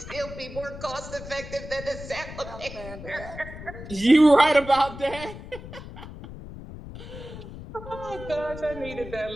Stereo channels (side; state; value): left; noise; rumble, 12 dB below the sound